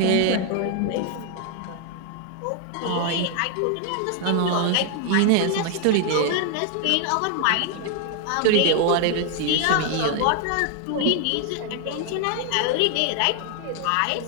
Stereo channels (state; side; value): different; both; correlation 0.01